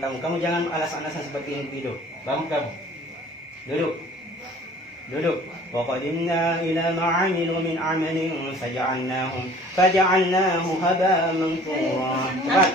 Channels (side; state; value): both; normal; correlation 0.50